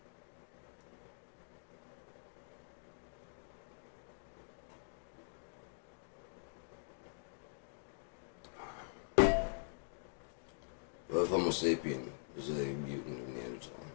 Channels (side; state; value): right; silent; digital silence